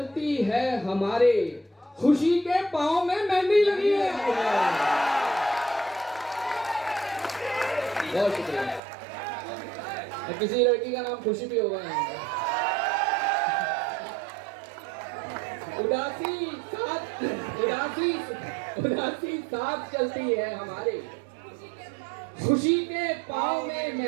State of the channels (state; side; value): drops out; left; at 8.8 s